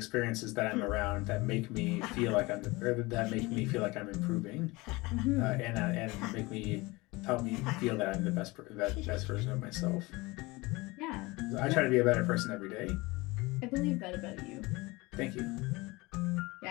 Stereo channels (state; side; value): quieter; right; 23.0 dB